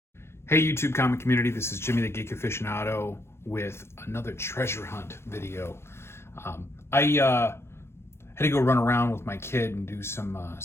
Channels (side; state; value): right; late; 0.12 ms